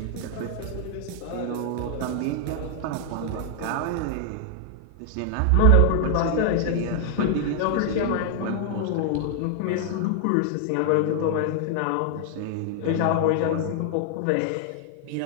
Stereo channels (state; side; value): different; both; correlation 0.00